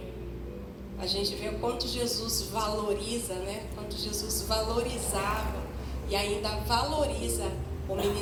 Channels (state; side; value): identical; both; correlation 1.00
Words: a gente vê o quanto Jesus valoriza, né? Quanto Jesus valorizava e ainda valoriza o